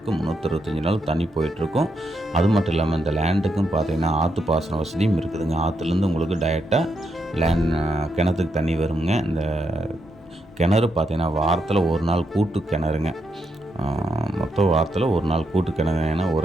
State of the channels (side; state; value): both; normal; correlation 0.81